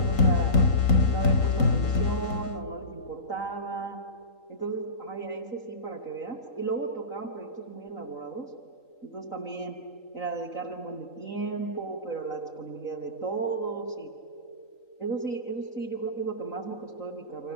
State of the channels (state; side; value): late; right; 3.9 ms